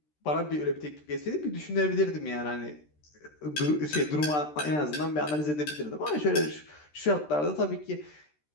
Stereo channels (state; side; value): late; right; 13 ms